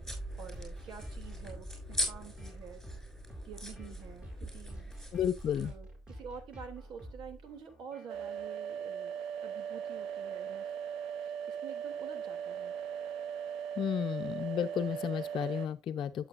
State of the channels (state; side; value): normal; both; correlation 0.61